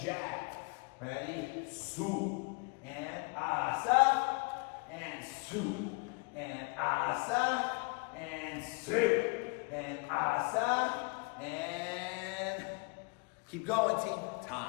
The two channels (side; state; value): right; quieter; 32.8 dB